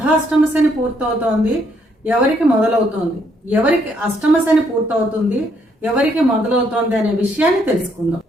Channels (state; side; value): normal; both; correlation 0.71